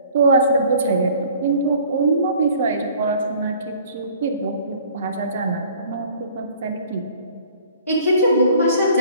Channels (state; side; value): inverted; both; correlation -0.52